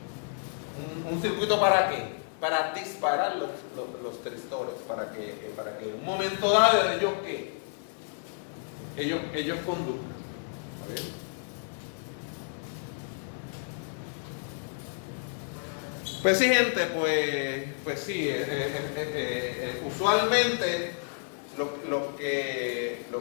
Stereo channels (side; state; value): right; silent; digital silence